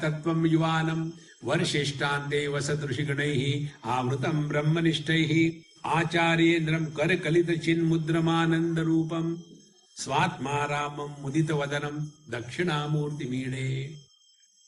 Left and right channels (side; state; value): both; identical; correlation 1.00